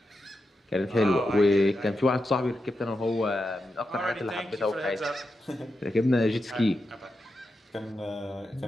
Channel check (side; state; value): both; normal; correlation 0.88